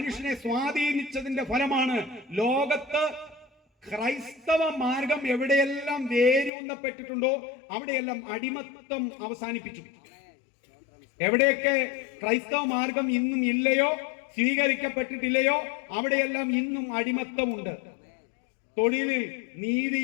സ്വാധീനിച്ചതിന്റെ ഫലമാണ് ലോകത്ത് ക്രൈസ്തവ മാർഗം എവിടെയെല്ലാം വേരൂന്നപ്പെട്ടിട്ടുണ്ടോ അവിടെയെല്ലാം അടിമത്തം അവസാനിപ്പിച്ചു. എവിടെയൊക്കെ ക്രൈസ്തവ മാർഗം ഇന്നും ഇല്ലയോ, സ്വീകരിക്കപ്പെട്ടിട്ടില്ലയോ അവിടെയെല്ലാം ഇന്നും അടിമത്തമുണ്ട്. തൊഴിലിൽ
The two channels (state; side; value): drops out; right; at 6.5 s